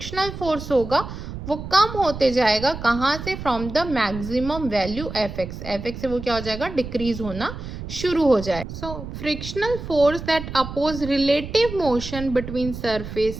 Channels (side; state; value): right; noise; rumble, 9 dB below the sound